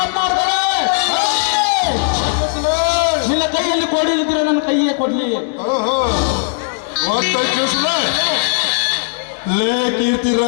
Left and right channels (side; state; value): right; silent; digital silence